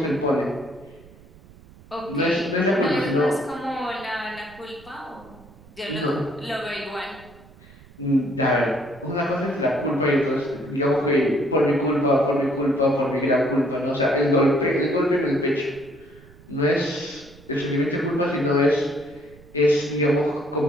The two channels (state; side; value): noise; right; rumble, 23 dB below the sound